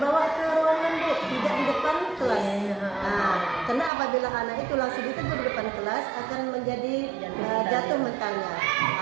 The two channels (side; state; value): left; drops out; at 3.9 s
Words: ke ruangan Bu, tidak di depan kelas. Karena apabila anak itu langsung ditegur di depan kelas akan menjadi jatuh mentalnya.